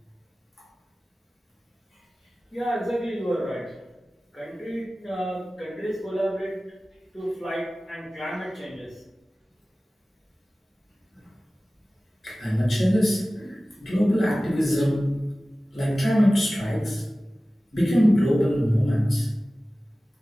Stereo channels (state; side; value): normal; both; correlation 0.97